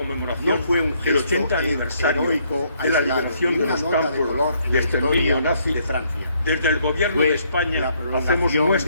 del 80 aniversario de la liberación de los campos de exterminio nazi de Francia, desde el Gobierno de España hacemos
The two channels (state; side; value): inverted; both; correlation -0.69